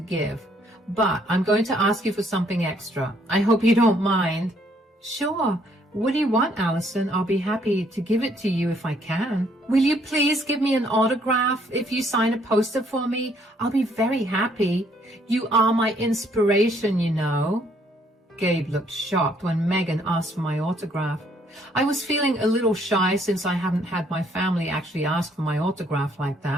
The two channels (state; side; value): normal; both; correlation 0.66